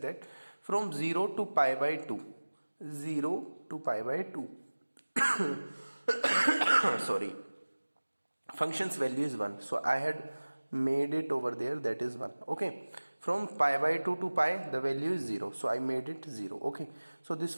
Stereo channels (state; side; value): inverted; both; correlation -1.00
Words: that, from 0 to pi by 2, 0 to pi by 2 sorry, function's value is 1, so I had made it over there, that is 1. Okay, from pi by 2 to pi the value is 0, so I made it 0. Okay, so this